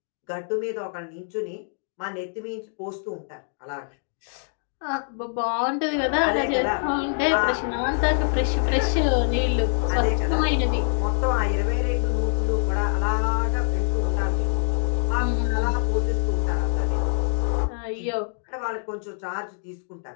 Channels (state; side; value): silent; right; digital silence